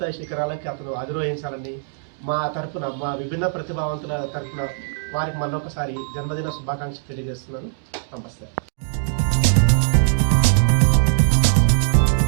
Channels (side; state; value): left; silent; digital silence